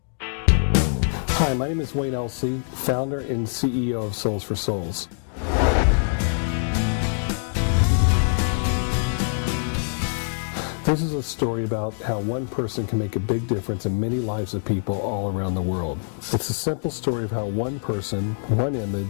Hi, my name is Wayne Elsey, founder and CEO of Souls for Souls. This is a story about how one person can make a big difference in many lives of people all around the world. It's a simple story of how one person, one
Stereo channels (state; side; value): silent; right; digital silence